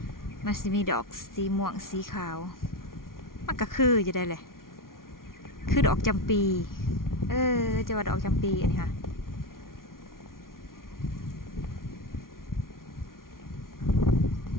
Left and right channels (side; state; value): right; late; 0.92 ms